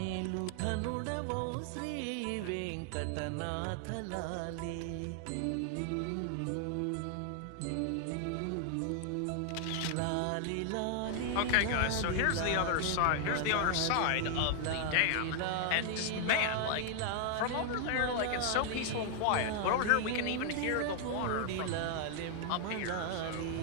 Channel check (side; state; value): both; different; correlation 0.00